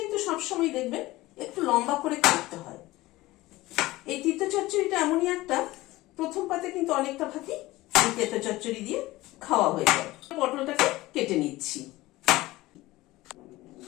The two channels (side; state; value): right; quieter; 18.6 dB